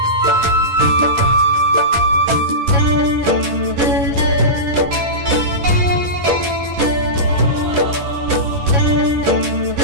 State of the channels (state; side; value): late; left; 11 ms